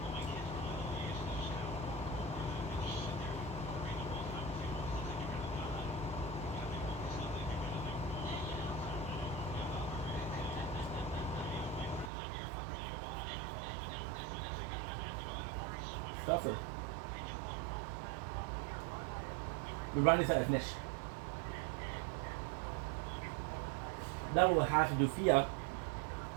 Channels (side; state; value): left; drops out; at 12.1 s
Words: Stuffer. We run is at finish. Now we'll have to do Fia.